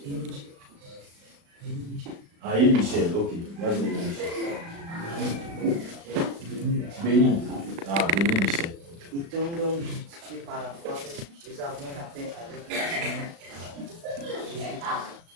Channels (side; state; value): left; late; 36 ms